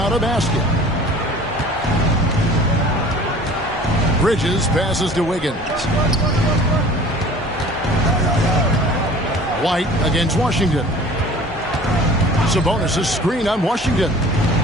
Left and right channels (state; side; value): normal; both; correlation 0.46